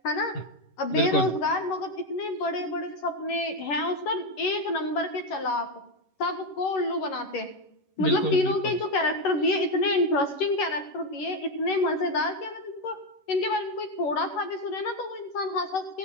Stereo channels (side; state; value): right; late; 11 ms